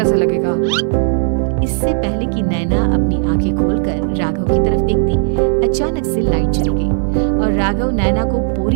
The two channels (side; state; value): left; silent; 69 dB below the other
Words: लगेगा? इससे पहले कि नैना अपनी आंखें खोलकर राघव की तरफ देखती, अचानक से लाइट चली गई और राघव नैना को